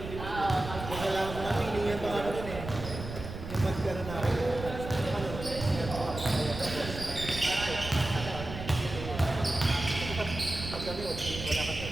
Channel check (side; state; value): right; noise; rumble, 9 dB below the sound